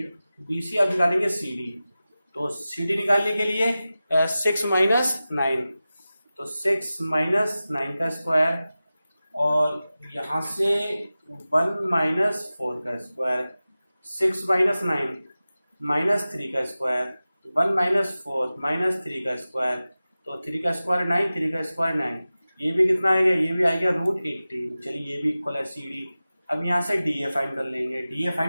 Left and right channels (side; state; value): both; inverted; correlation -0.96